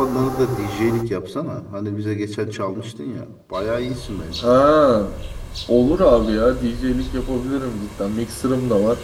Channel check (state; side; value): identical; both; correlation 1.00